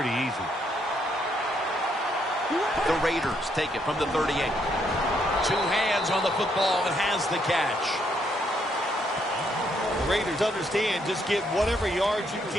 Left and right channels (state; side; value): normal; both; correlation 0.73